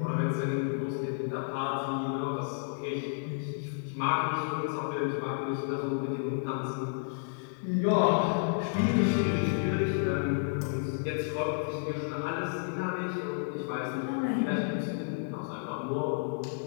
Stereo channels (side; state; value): right; silent; 57 dB below the other